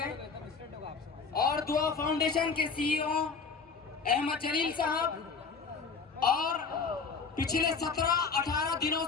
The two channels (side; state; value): right; quieter; 5.1 dB